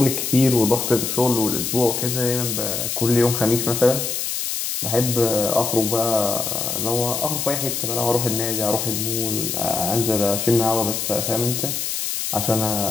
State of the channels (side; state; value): left; noise; hiss, 2 dB below the sound